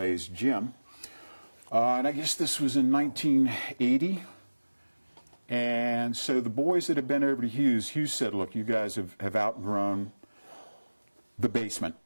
gym. And I guess this was in 1980. And so the boys that had been over to Hugh said, look, you guys have outgrown the basement,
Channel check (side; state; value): both; inverted; correlation -1.00